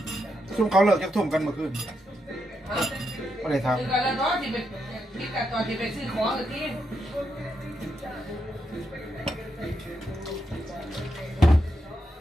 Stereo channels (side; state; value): both; normal; correlation 0.82